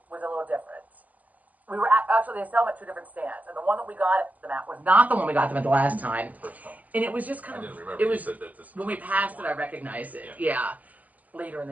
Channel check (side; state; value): left; late; 0.078 ms